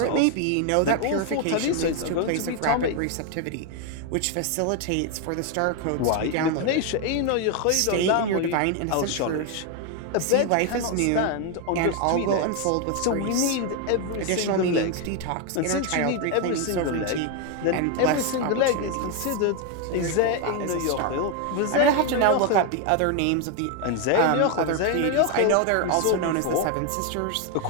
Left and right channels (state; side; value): different; both; correlation 0.01